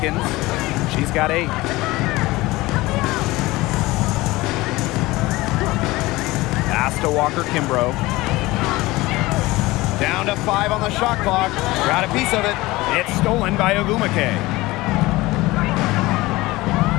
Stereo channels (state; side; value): quieter; right; 20.0 dB